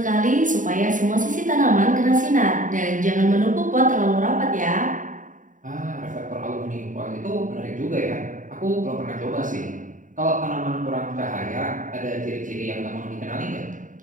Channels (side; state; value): left; late; 0.38 ms